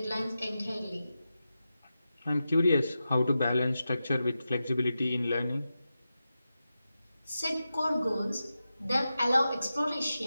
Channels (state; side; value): inverted; both; correlation -0.91